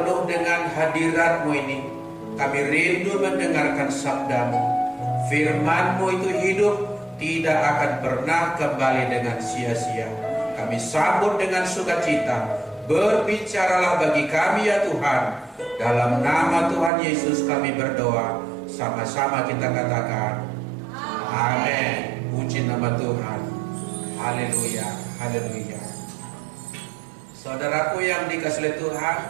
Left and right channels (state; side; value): drops out; left; at 16.9 s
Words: dengan hadirat-Mu ini. Kami rindu mendengarkan sabda-Mu. Firman-Mu itu hidup, tidak akan pernah kembali dengan sia-sia. Kami sambut dengan sukacita. Berbicaralah bagi kami ya Tuhan. Dalam nama Tuhan Yesus kami berdoa. Sama-sama kita katakan amin. Puji nama Tuhan. Haleluya, haleluya. Saudaraku yang dikasihi Tuhan,